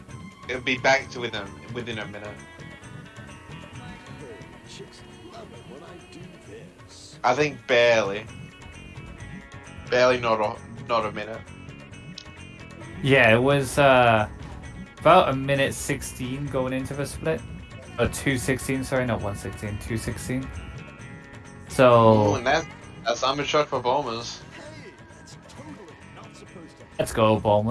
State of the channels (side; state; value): both; identical; correlation 1.00